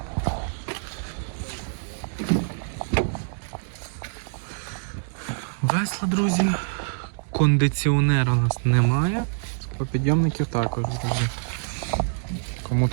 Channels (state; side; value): silent; left; digital silence